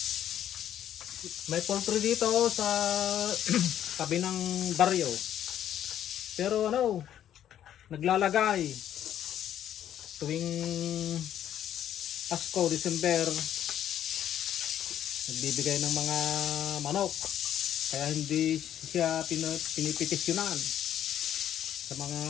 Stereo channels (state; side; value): quieter; right; 10.8 dB